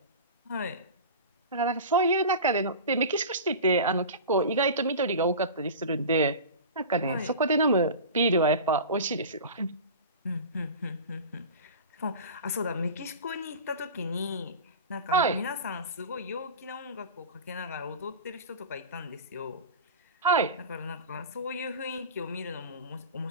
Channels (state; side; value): inverted; both; correlation -0.32